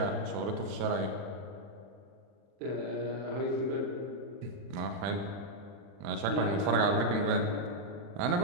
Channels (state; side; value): late; left; 40 ms